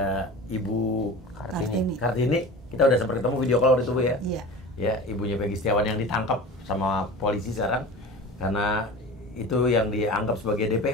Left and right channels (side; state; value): both; normal; correlation 0.35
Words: Ibu Kartini. Kita udah sempat ketemu video call waktu itu Bu ya. Iya. Ya, ibunya Peggy Setiawan yang ditangkap sama polisi sekarang karena itu yang dianggap sebagai